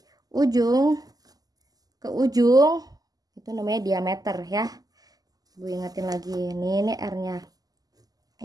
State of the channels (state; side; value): late; left; 0.18 ms